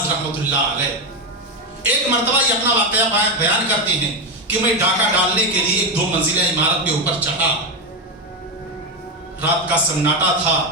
رحمۃ اللہ علیہ ایک مرتبہ یہ اپنا واقعہ بیان کرتے ہیں کہ میں ڈاکہ ڈالنے کے لیے ایک 2 منزلہ عمارت کے اوپر چڑھا، رات کا سناٹا تھا،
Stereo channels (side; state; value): both; normal; correlation 0.11